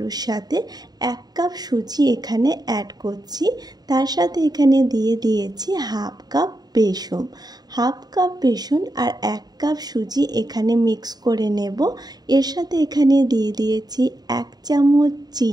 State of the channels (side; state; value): left; late; 0.19 ms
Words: সাথে 1 কাপ সুজি এখানে অ্যাড করছি। তার সাথে এখানে দিয়ে দিয়েছি হাফ কাপ বেসন আর 1 কাপ সুজি এখানে মিক্স করে নেব। এর সাথে এখানে দিয়ে দিয়েছি 1 চামচ